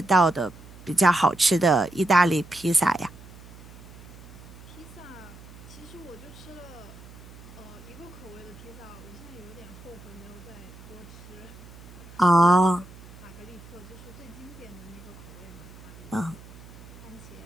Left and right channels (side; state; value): right; noise; hum, 18 dB below the sound